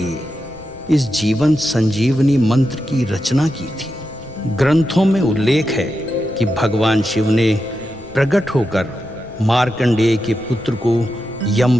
इस जीवन संजीवनी मंत्र की रचना की थी। ग्रंथों में उल्लेख है कि भगवान शिव ने प्रकट होकर मार्कंडेय के पुत्र को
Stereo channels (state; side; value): noise; left; rumble, 21 dB below the sound